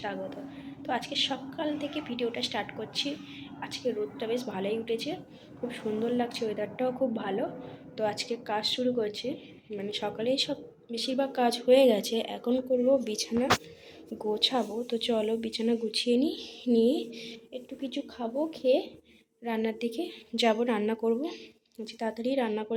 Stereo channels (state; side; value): identical; both; correlation 1.00